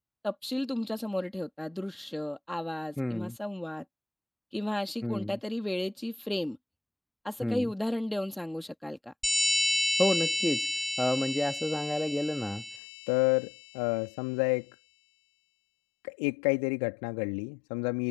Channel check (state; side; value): drops out; right; at 12.8 s